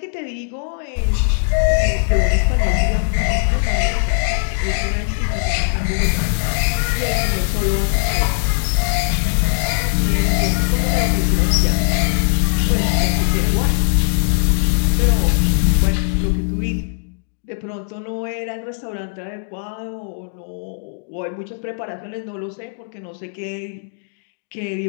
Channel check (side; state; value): right; silent; digital silence